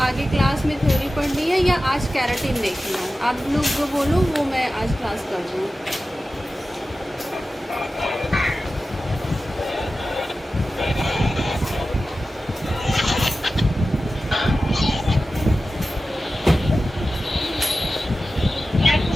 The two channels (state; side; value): normal; both; correlation 0.94